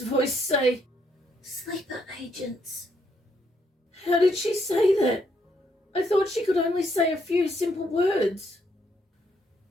voice say, "Sleeper agents." How did she say that? I thought she could only say a few simple words.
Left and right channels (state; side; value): normal; both; correlation 0.74